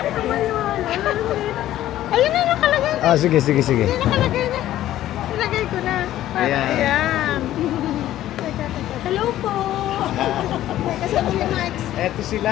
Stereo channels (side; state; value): right; quieter; 13.4 dB